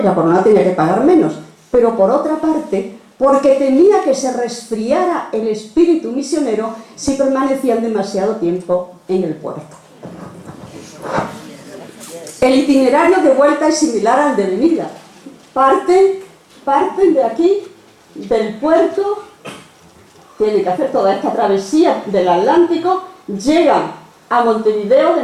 la corona tenía que pagar menos. Pero por otra parte, porque temía que se resfriara el espíritu misionero si permanecían demasiado tiempo en el puerto. El itinerario de vuelta es similar al de venida. Parten de aquí, del puerto, tienen que hacer toda esta travesía del Atlántico, llegan a Montevideo, de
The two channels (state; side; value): identical; both; correlation 1.00